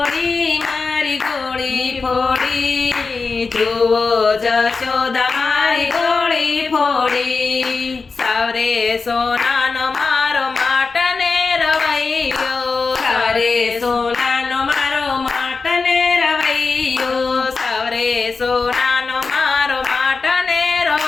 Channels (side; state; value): right; quieter; 4.4 dB